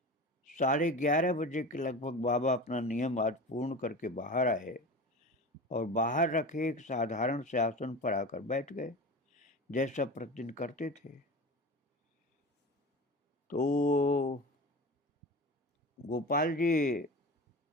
11:30 बजे के लगभग बाबा अपना नियम आज पूर्ण करके बाहर आए और बाहर रखे एक साधारण से आसन पर आकर बैठ गए, जैसा प्रतिदिन करते थे। तो गोपाल जी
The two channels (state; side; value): normal; both; correlation 0.31